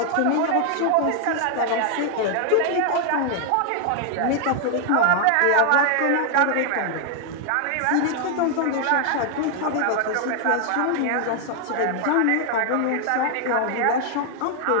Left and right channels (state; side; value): different; both; correlation 0.00